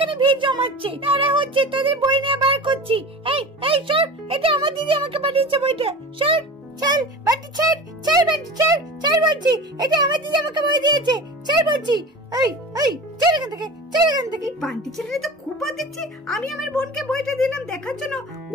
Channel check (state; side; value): normal; both; correlation 0.34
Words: ভিড় জমাচ্ছে, তারা হচ্ছে তোদের বই নিয়ে বার করছি। এই এই সর, এটা আমার দিদি আমাকে পাঠিয়েছে বইটা, সর চল বান্টি ছাড়, ছাড় বান্টি ছাড়, ছাড় বলছি, এটা আমার দিদি আমাকে বই দিয়েছে, ছাড় বলছি। এই এই ছাড় এখান থেকে, ছাড় এখান থেকে। বান্টি ছেলেটা তো খুব বাদ দিচ্ছি, আমি আমার বোনকে বইটা দিলাম দেখার জন্য,